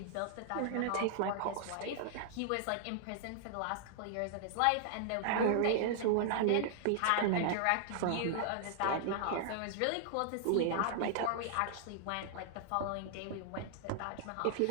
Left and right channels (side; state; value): both; different; correlation -0.01